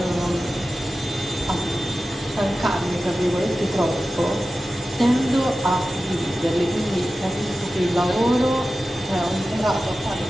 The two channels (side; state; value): both; normal; correlation 0.94